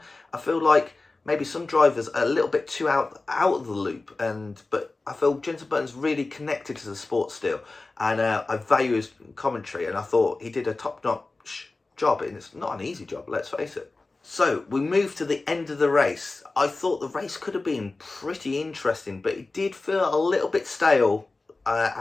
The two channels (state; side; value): quieter; right; 3.4 dB